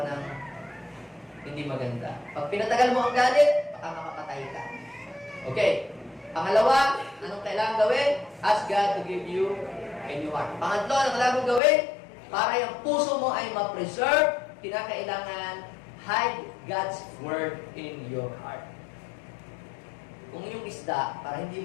ng hindi maganda. Pag pinatagal mo ang galit, baka makapatay ka. Okay. Pangalawa, anong kailangan gawin? Ask God to give you a new heart. Pangatlo, anong kailangan gawin? Para yung puso mo ay ma-preserve, kinakailangan hide God's Word in your heart. Kung yung isda, para hindi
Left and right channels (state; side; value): drops out; right; at 11.6 s